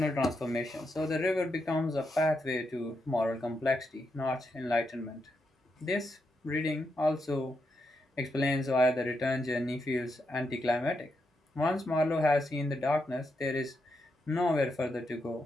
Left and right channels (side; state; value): both; normal; correlation 0.83